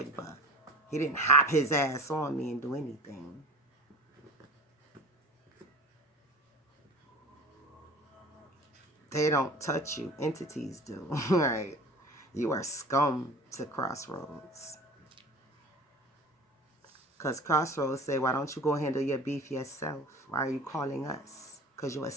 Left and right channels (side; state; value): both; normal; correlation 0.38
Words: He didn't hop his ass on me and do anything. They don't touch you. Entities do. Right? You are scum to Crossroads. Because Crossroads say, why don't you go handle your beef yourself? Why are you calling us? Because you're a